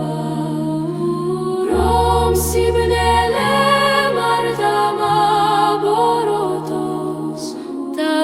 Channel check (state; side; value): identical; both; correlation 1.00